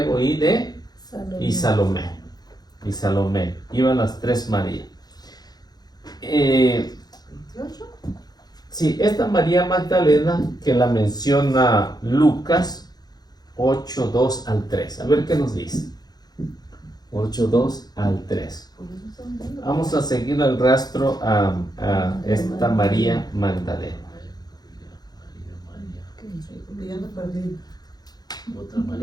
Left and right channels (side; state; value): right; late; 0.19 ms